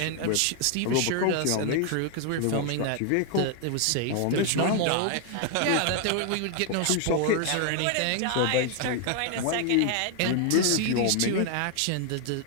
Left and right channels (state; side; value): different; both; correlation 0.00